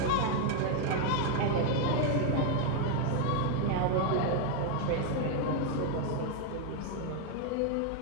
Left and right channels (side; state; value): both; different; correlation 0.01